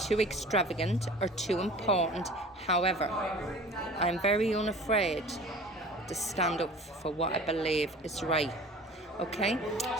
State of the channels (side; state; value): both; normal; correlation 0.42